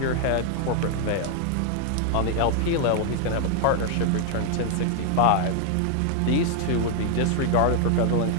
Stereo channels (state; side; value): different; both; correlation 0.00